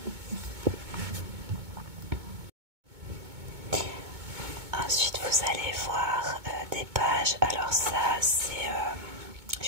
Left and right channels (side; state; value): left; late; 2.2 ms